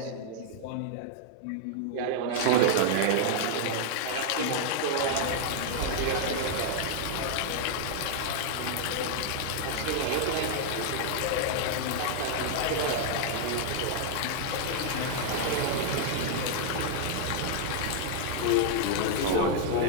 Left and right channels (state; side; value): different; both; correlation -0.01